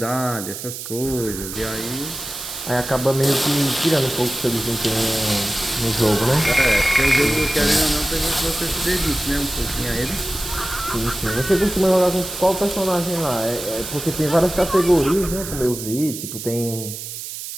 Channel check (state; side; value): noise; right; hiss, 9 dB below the sound